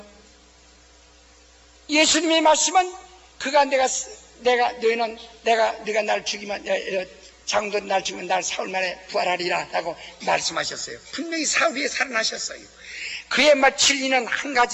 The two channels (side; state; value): both; identical; correlation 1.00